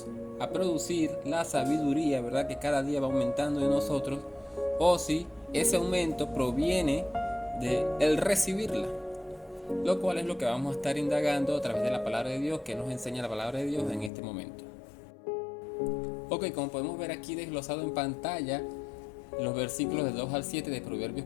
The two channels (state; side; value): drops out; right; at 14.1 s